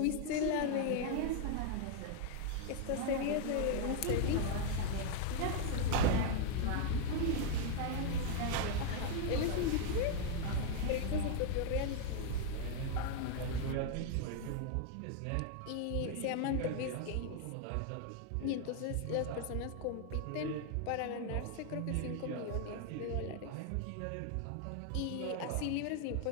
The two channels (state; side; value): different; both; correlation 0.00